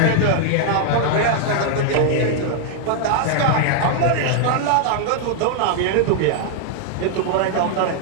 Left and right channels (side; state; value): both; different; correlation 0.00